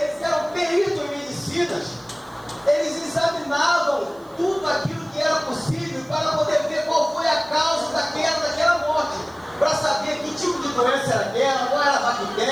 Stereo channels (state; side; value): noise; right; hiss, 29 dB below the sound